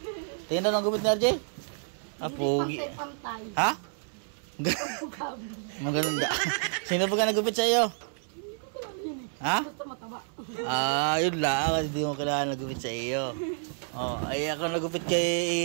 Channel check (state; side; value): silent; left; 58 dB below the other